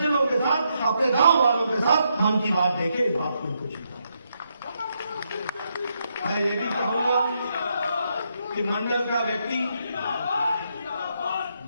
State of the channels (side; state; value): both; inverted; correlation -0.79